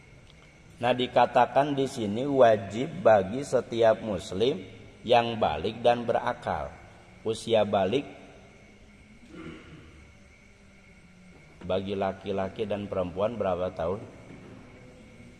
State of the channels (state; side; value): identical; both; correlation 1.00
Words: Nah, dikatakan di sini wajib bagi setiap muslim yang balik dan berakal. Usia balik bagi laki-laki dan perempuan berapa tahun?